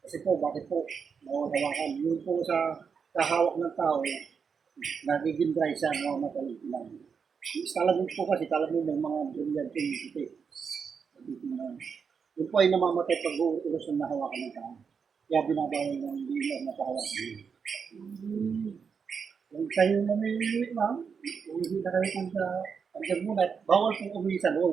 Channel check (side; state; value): left; quieter; 6.1 dB